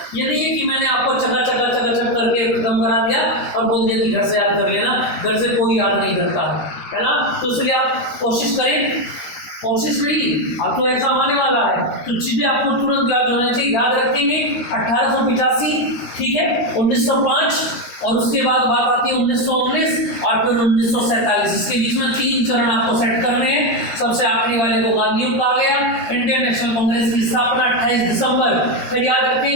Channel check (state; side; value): late; right; 13 ms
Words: ये नहीं है कि मैंने आपको चका करके खत्म करा दिया और बोल दिया कि घर से याद कर लेना, घर से कोई याद नहीं करता है ना। तो इसलिए आप कोशिश करें, कोशिश नहीं, अब तो एग्जाम आने वाला है तो चीजें आपको तुरंत याद होना चाहिए। याद रखेंगे 1885, ठीक है, 1905 और उसके बाद बात आती है 1919 और फिर 1947। इसके बीच में 3 चरण आपको सेट करने हैं। सबसे आखिरी वाले को गांधी युग कहा गया। इंडियन नेशनल कांग्रेस की स्थापना 28 दिसंबर, फिर याद